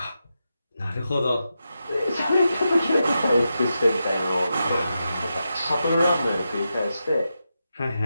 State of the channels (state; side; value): inverted; both; correlation -0.88